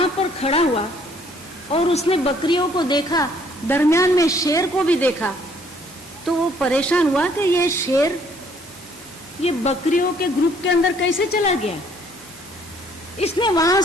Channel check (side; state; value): both; normal; correlation 0.62